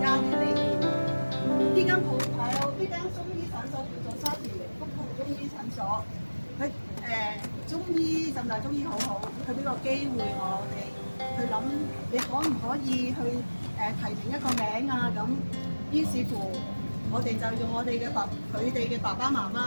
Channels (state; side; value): inverted; both; correlation -1.00